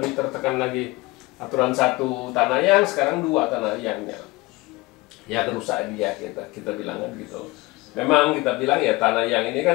tertekan lagi. Aturan satu tanah yang, sekarang 2 tanah yangnya ya kerusak dia, kita bilang kan gitu. Memang kita bilang ya tanah yang ini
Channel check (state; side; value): quieter; right; 22.0 dB